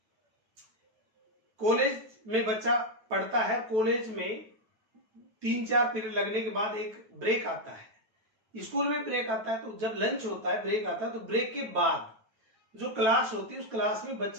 कॉलेज में बच्चा पढ़ता है, कॉलेज में 3-4 पीरियड लगने के बाद एक ब्रेक आता है। स्कूल में ब्रेक आता है, तो जब लंच होता है, ब्रेक आता है, तो ब्रेक के बाद जो क्लास होती है, उस क्लास में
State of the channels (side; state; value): left; late; 9.1 ms